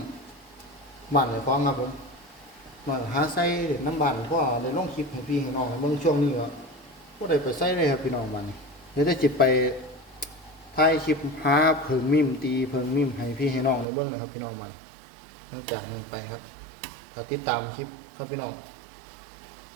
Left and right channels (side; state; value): left; drops out; at 13.9 s